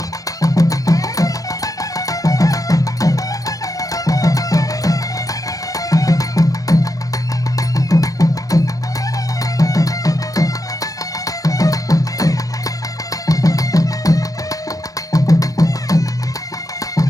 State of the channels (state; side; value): late; right; 0.17 ms